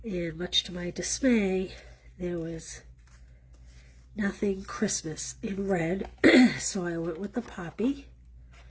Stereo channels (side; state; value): both; identical; correlation 1.00